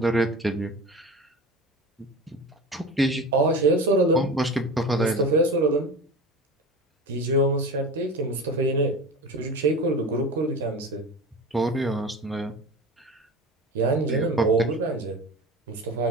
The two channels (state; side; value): normal; both; correlation 0.32